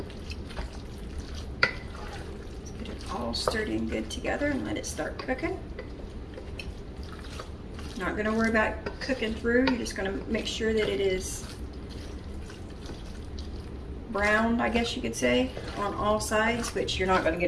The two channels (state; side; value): identical; both; correlation 1.00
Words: All stirred in good together and let it start cooking. Not going to worry about cooking through. You're just going to make sure that it is browned, I guess you could say, on all sides, which you're not going to